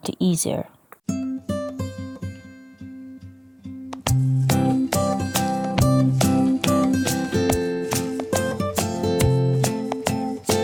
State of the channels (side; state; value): both; identical; correlation 1.00